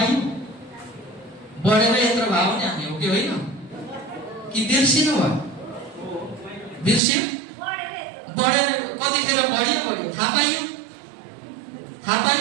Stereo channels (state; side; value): drops out; left; at 7.0 s